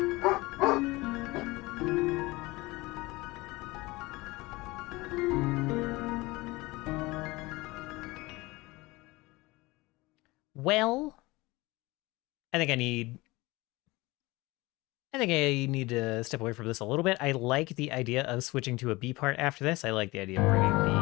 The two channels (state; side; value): quieter; right; 21.7 dB